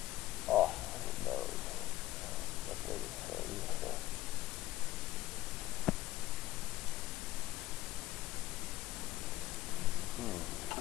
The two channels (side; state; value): right; quieter; 14.9 dB